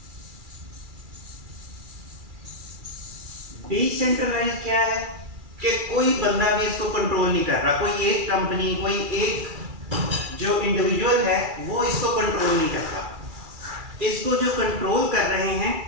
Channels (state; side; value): late; left; 2.3 ms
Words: डिसेंट्रलाइज्ड क्या है? कि कोई बंदा भी इसको कंट्रोल नहीं कर रहा, कोई एक कंपनी, कोई एक जो इंडिविजुअल है वो इसको कंट्रोल नहीं करता। इसको जो कंट्रोल कर रहे हैं